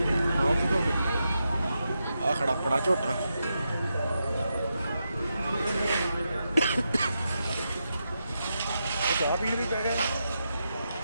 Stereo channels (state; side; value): inverted; both; correlation -0.86